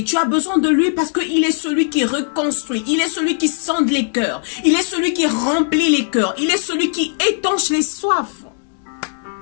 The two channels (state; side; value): silent; right; digital silence